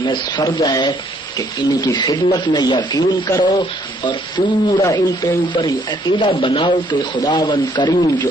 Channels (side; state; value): both; normal; correlation 0.66